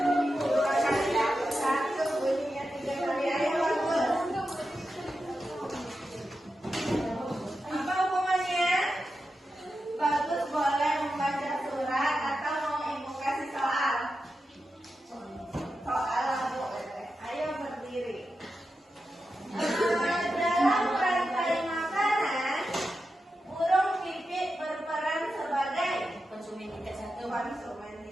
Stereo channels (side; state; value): both; normal; correlation 0.90